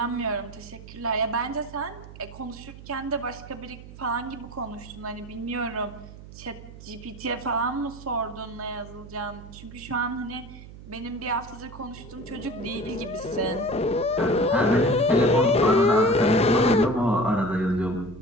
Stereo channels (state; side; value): noise; right; hum, 16 dB below the sound